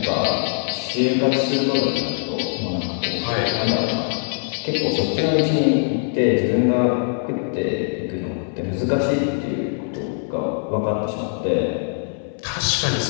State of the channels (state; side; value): silent; right; 64 dB below the other